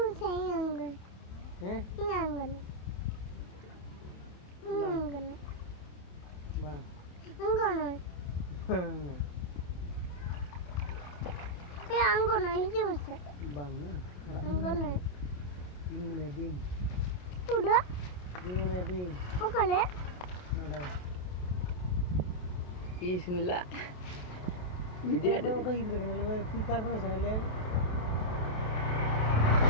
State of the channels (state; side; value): late; right; 28 ms